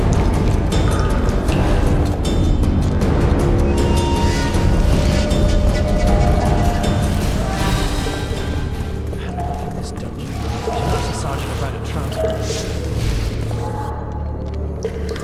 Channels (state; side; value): identical; both; correlation 1.00